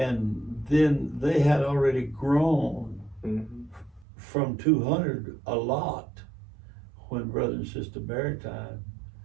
then they had already grown Mm-hmm. from 200 a lot when Brother and Sister Barrett died.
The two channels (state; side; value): drops out; left; at 4.0 s